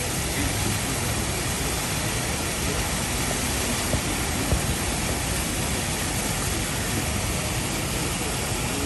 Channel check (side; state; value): both; identical; correlation 1.00